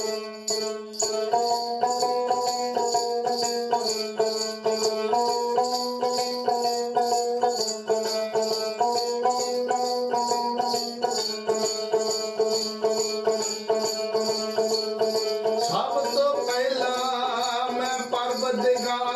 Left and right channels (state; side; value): identical; both; correlation 1.00